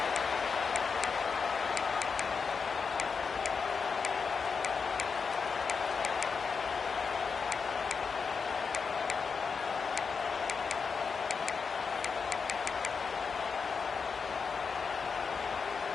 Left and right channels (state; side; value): quieter; right; 5.4 dB